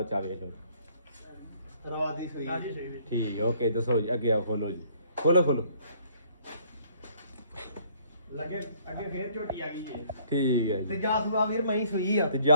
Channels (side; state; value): both; inverted; correlation -0.61